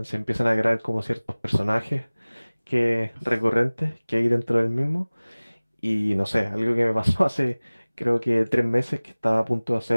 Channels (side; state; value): both; inverted; correlation -1.00